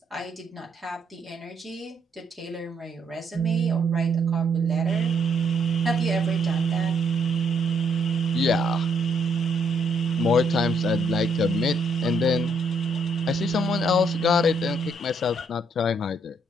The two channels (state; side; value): normal; both; correlation 0.71